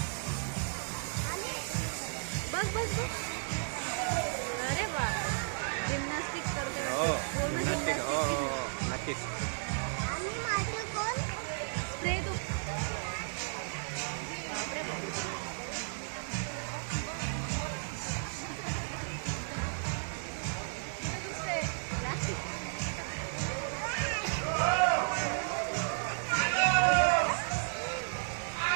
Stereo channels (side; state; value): left; silent; digital silence